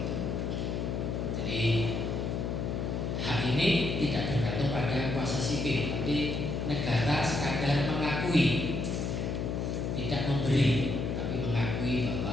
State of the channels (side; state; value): left; noise; hum, 1 dB below the sound